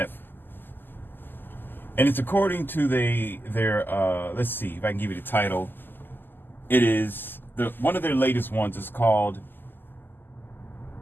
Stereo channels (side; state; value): right; late; 0.093 ms